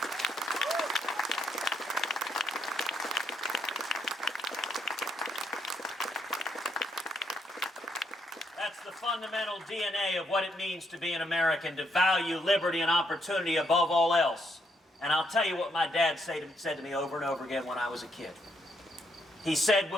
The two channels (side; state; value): both; normal; correlation 0.74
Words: That's the fundamental DNA of what it means to be an American, to value liberty and opportunity above all else. And I'll tell you what my dad said to me over and over again when I was a kid. He said,